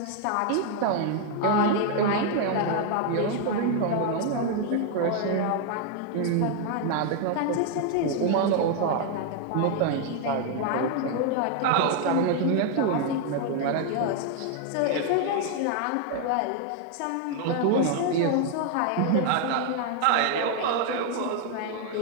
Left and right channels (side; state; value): both; different; correlation 0.00